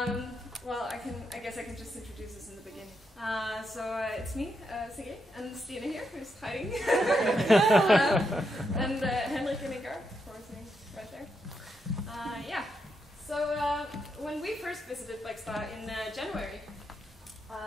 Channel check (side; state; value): both; normal; correlation 0.82